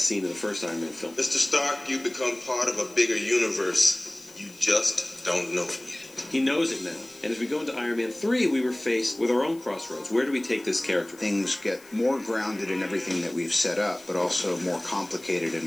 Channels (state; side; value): noise; left; hiss, 24 dB below the sound